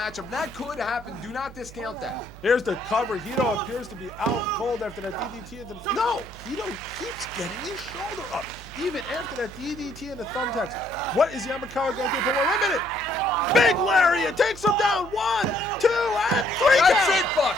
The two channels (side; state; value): right; noise; hum, 17 dB below the sound